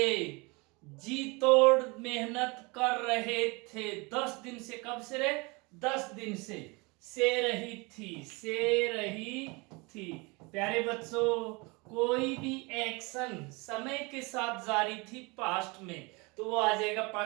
जी तोड़ मेहनत कर रहे थे। 10 दिन से, कब से रे? 10 दिन से रही थी, से रही थी। प्यारे बच्चों, कोई भी एक्शन समय के साथ जारी थी पास्ट में तो वो आ जाएगा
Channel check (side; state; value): left; quieter; 27.3 dB